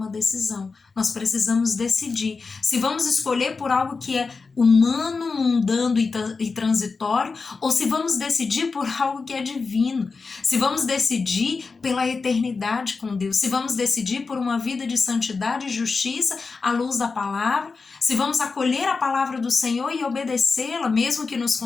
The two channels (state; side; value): quieter; right; 4.5 dB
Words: decisão. Nós precisamos decidir se vamos escolher por algo que é humano, mundano e transitório, ou se vamos decidir por algo que é divino. Se vamos decidir pela eternidade com Deus, se vamos decidir por uma vida de santidade e justiça à luz da palavra, se vamos acolher a palavra do Senhor e obedecê-la, mesmo que nos